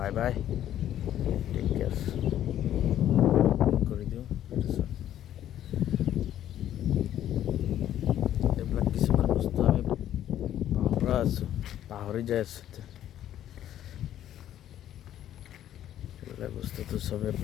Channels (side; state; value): right; quieter; 11.6 dB